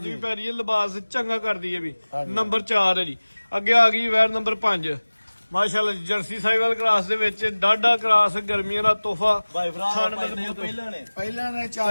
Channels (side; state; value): both; inverted; correlation -1.00